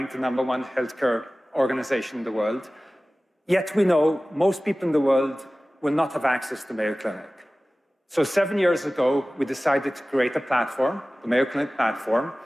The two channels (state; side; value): normal; both; correlation 0.97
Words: the #1 healthcare organization in the world. Yet we know most people in the world will not have access to Mayo Clinic. So 7 years ago, we decided to create a platform, the Mayo Clinic platform,